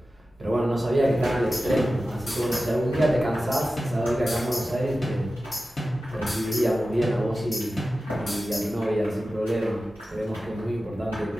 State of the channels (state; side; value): normal; both; correlation 0.94